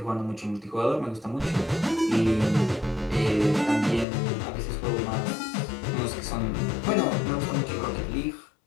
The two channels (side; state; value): right; drops out; at 4.0 s